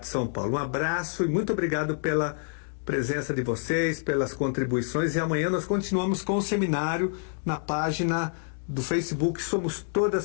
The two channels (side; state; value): right; silent; digital silence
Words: de São Paulo. Um abraço e muito obrigado pela presença de vocês, pelas contribuições, e amanhã nós continuamos com o seminário na página do Facebook Somos